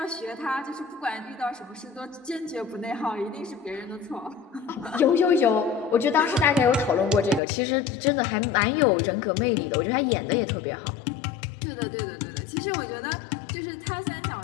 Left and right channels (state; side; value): drops out; right; at 7.4 s